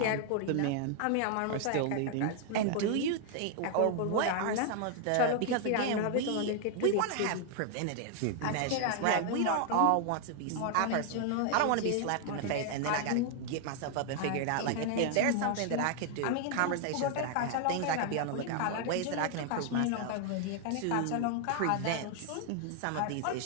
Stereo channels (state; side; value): different; both; correlation 0.00